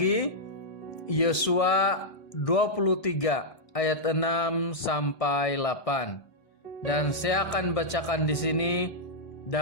Yosua 23 ayat 6 sampai 8. Dan saya akan bacakan di sini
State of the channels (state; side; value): late; right; 1.6 ms